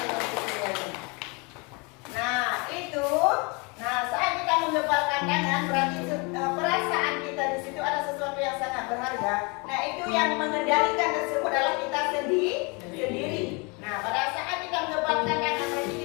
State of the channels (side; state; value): right; quieter; 30.1 dB